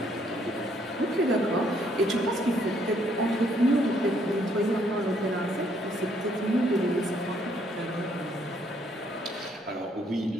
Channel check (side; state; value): both; normal; correlation 0.68